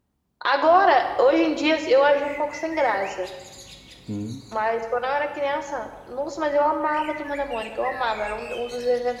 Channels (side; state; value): both; identical; correlation 1.00